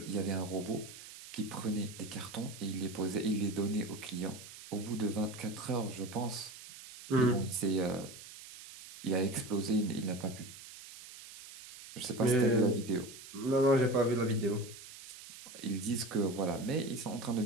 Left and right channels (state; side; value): noise; right; hiss, 15 dB below the sound